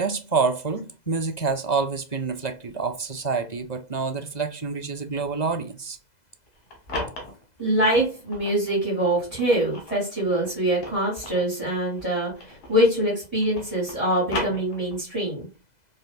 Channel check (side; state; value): right; late; 2.0 ms